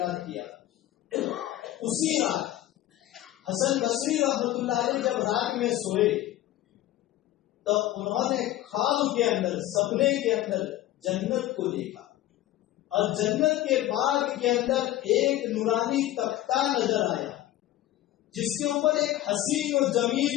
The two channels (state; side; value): quieter; right; 14.6 dB